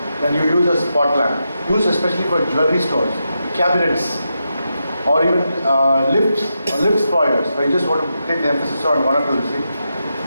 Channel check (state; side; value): inverted; both; correlation -0.86